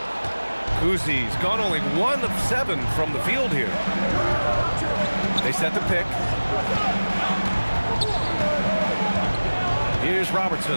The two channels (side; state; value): both; inverted; correlation -1.00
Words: Kuzi's gone only 1 of 7 from the field here. They set the pick. Here's